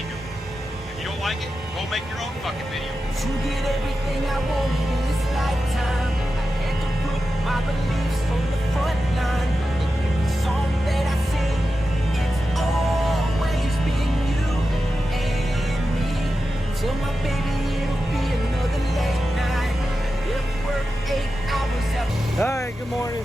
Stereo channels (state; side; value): normal; both; correlation 0.92